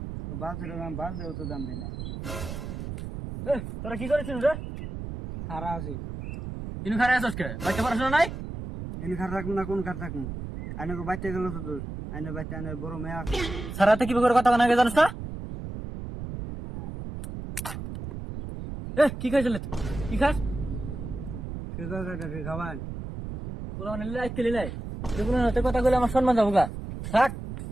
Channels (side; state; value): right; noise; rumble, 8 dB below the sound